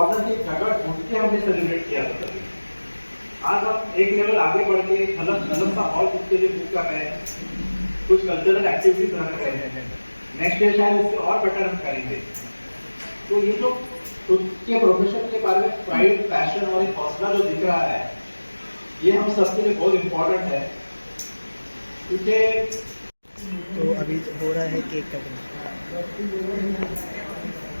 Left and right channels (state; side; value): inverted; both; correlation -1.00